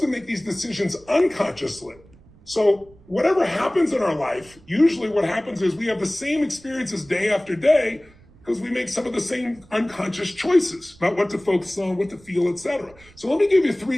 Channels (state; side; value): noise; right; rumble, 26 dB below the sound